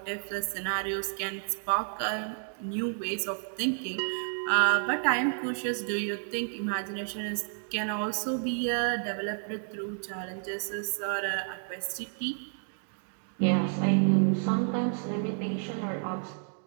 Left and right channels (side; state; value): left; silent; 57 dB below the other